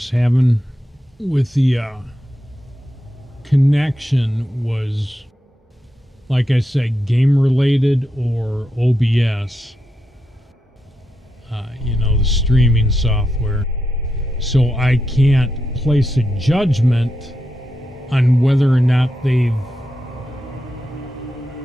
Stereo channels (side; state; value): both; normal; correlation 0.86